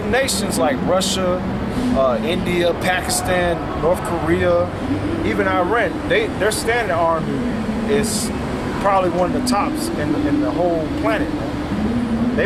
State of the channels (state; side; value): identical; both; correlation 1.00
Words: nations like Russia, India, Pakistan, North Korea, even Iran, their standing army is probably one of the tops in the whole planet.